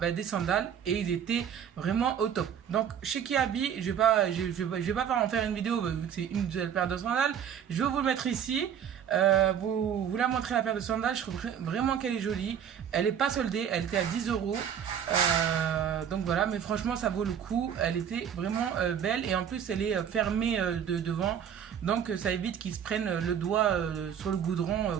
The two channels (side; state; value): left; quieter; 8.6 dB